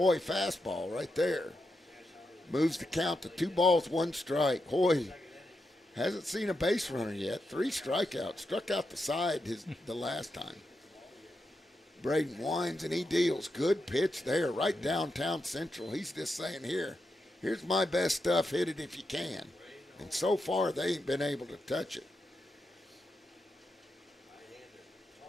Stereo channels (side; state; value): both; normal; correlation 0.86